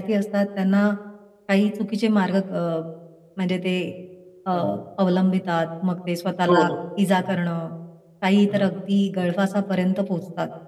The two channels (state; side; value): identical; both; correlation 1.00